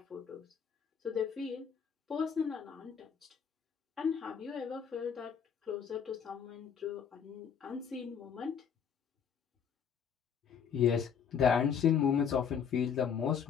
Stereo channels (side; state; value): right; quieter; 7.3 dB